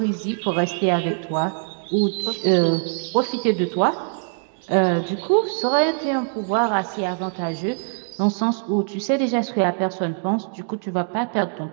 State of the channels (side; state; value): left; silent; 64 dB below the other